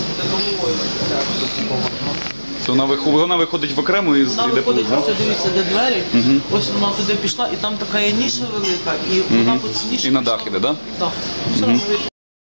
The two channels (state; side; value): inverted; both; correlation -1.00